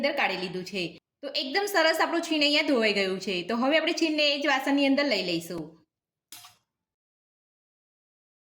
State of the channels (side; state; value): both; identical; correlation 1.00